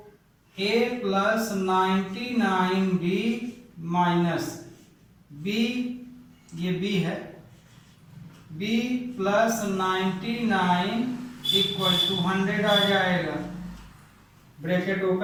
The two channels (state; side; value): identical; both; correlation 1.00